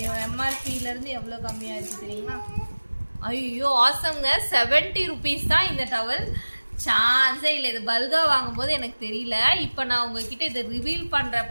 எம்ஆர்பியிலேருந்து எவ்வளோ கம்மியாக இருக்குது தெரியுமா? ஐயோ ஆசம்ங்க, 70 ருபீஸ் தான் இந்த டவல். சான்ஸே இல்லை. இது பல்கா வாங்கும்போது எனக்கு தெரியல. இப்போ நான் உங்ககிட்ட இதை ரிவீல் பண்ணுற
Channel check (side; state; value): both; inverted; correlation -1.00